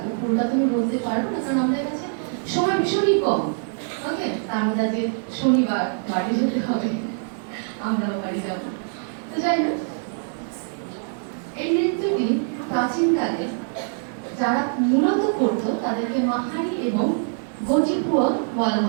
পুরোটা তুমি বলতে পারবো না কারণ আমাদের কাছে সময় ভীষণই কম। ওকে, তার মধ্যে আজকে শনিবার বাড়ি যেতে হবে। আমরাও বাড়ি যাব। তো যাই হোক, এই নৃত্যটি প্রাচীনকালে যারা মূলত করতো তাদেরকে মাহারি এবং গজিপুয়া বলা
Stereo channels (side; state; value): left; silent; 63 dB below the other